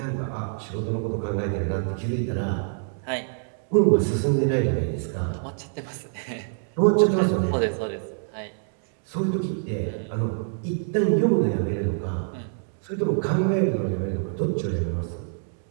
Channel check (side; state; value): left; silent; 61 dB below the other